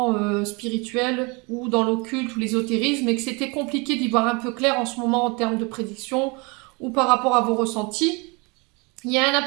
spirituel ou dans l'occulte ou l'ésotérisme et que c'était compliqué d'y voir un peu clair en ce moment en termes de prédiction ou par rapport à vos ressentis, il y a un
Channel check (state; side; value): quieter; left; 29.1 dB